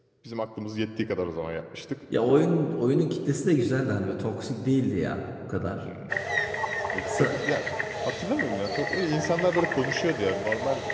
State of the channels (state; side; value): identical; both; correlation 1.00